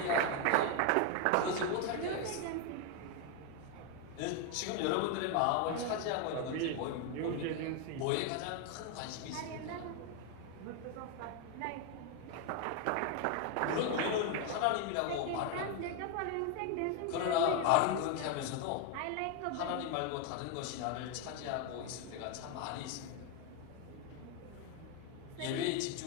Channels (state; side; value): different; both; correlation 0.01